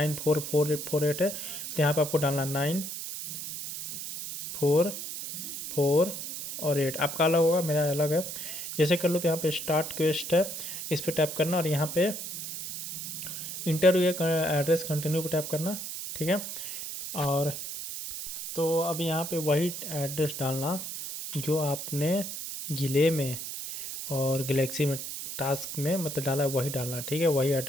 है, तो यहाँ पे आपको डालना 944 और 8। आपका अलग होगा, मेरा अलग है। जैसे कर लो तो यहाँ पे स्टार्ट क्वेस्ट है, इस पर टैप करना और यहाँ पे इंटरव्यू एड्रेस कंटिन्यू पे टैप करना, ठीक है। और तो अब यहाँ पे वही एड्रेस डालना जो आपने जिले में और गैलेक्सी में टास्क में मतलब डाला है, वही डालना, ठीक है। वही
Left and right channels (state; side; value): noise; right; hiss, 7 dB below the sound